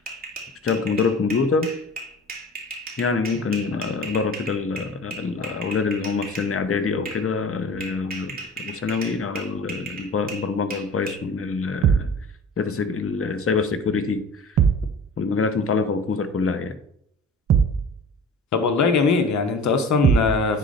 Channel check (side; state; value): both; normal; correlation 0.40